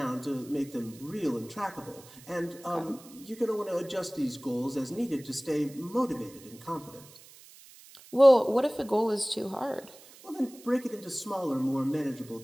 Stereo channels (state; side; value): noise; right; hiss, 21 dB below the sound